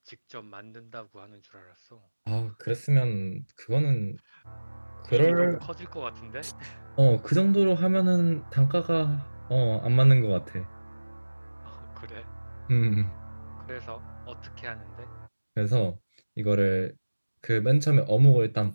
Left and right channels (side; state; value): both; inverted; correlation -1.00